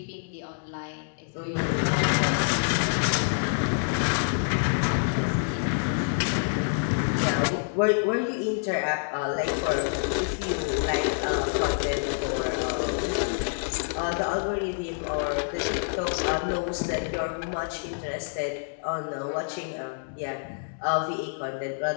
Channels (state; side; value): silent; right; digital silence